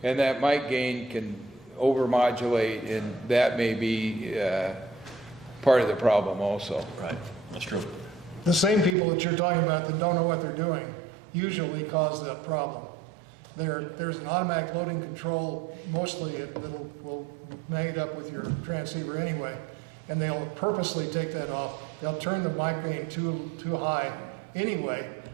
And that mic gain can overmodulate, and that may be part of the problem also. Right, that's true. The same people that you're talking about that don't know what they're doing usually cause that problem. There's an automatic loading control, mostly will made up with your transceiver anyway, and they'll purposely take that off. They'll turn the mic gain too high anyway,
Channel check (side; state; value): left; drops out; at 9.0 s